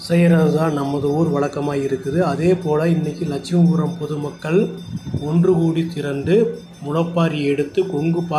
செய்கிறது தான் நமது ஊர் வழக்கமாக இருக்குது. அதே போல் இன்றைக்கி லட்சுமிபுரம் பொதுமக்கள் ஒன்று கூடி திரண்டு முளைப்பாரி எடுத்து கொங்கு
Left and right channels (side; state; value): both; identical; correlation 1.00